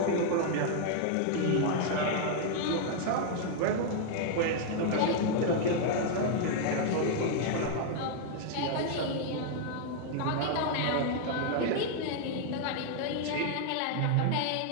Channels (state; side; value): different; both; correlation 0.00